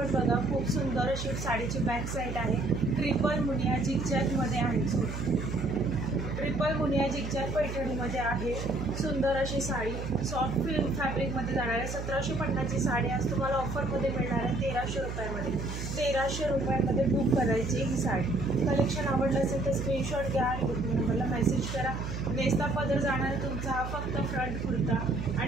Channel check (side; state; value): right; noise; hum, 6 dB below the sound